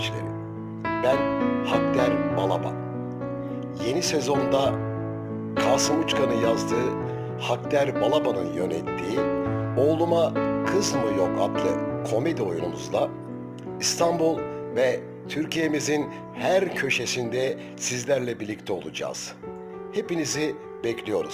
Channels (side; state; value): both; identical; correlation 1.00